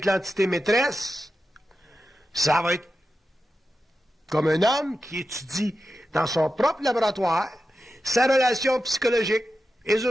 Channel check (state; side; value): normal; both; correlation 0.91